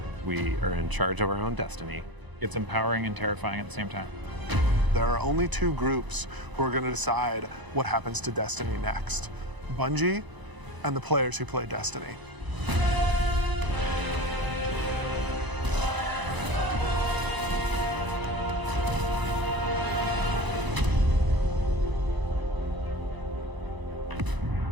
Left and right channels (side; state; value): left; late; 1.0 ms